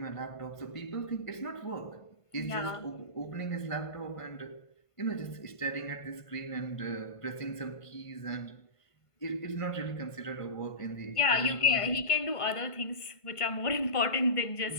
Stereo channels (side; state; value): right; late; 1.5 ms